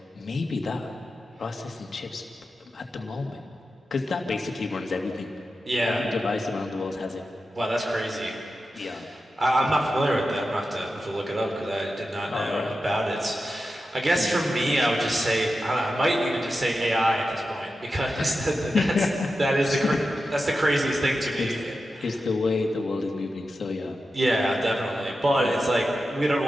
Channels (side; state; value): both; normal; correlation 0.91